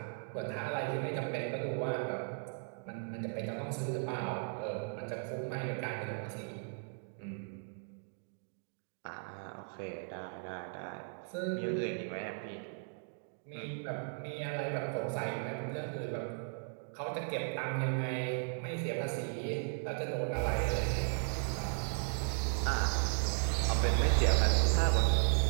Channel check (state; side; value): silent; left; 54 dB below the other